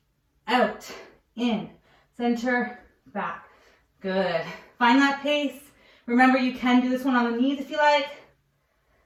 Out, in, center, back. Good. Find that pace. Remember, you can do this one on the knees if you like.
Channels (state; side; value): identical; both; correlation 1.00